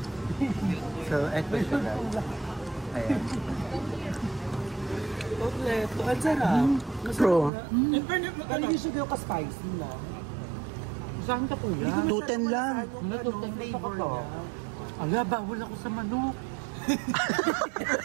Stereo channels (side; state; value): left; drops out; at 7.5 s